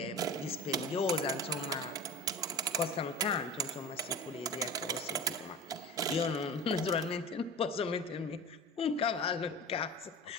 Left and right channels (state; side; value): normal; both; correlation 0.33